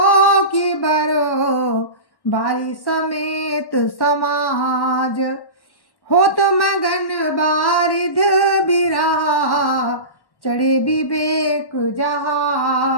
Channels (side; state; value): right; late; 1.1 ms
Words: की बरो बारी समेत समाज। हो तो मगन बारिध बिरहा चढ़े विवेक